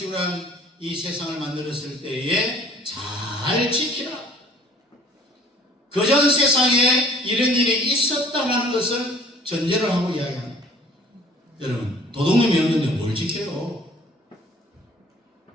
한 이 세상을 만들었을 때에 잘 지키라. 그전 세상에 이런 일이 있었다는 것을 전제를 하고 이야기합니다. 여러분, 도둑놈이 없는데 뭘 지켜요?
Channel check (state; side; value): normal; both; correlation 0.53